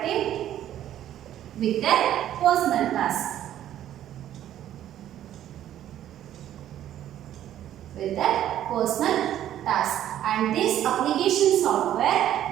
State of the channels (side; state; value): left; quieter; 11.7 dB